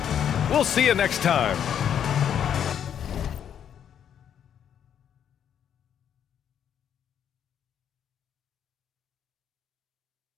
We'll see you next time.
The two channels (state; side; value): quieter; right; 9.0 dB